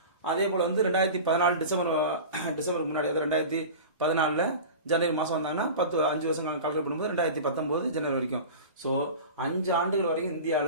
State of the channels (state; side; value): inverted; both; correlation -0.33